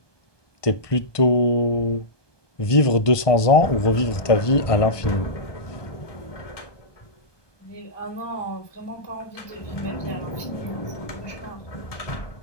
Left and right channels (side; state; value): right; late; 1.2 ms